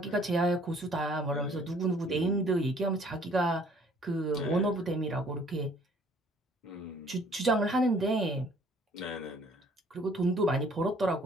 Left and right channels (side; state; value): both; normal; correlation 0.58